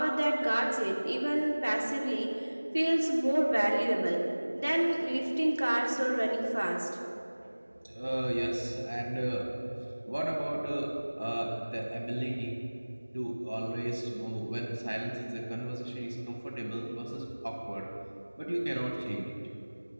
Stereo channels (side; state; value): both; inverted; correlation -1.00